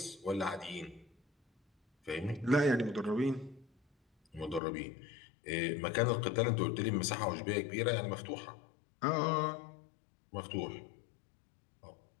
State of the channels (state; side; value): drops out; right; at 4.6 s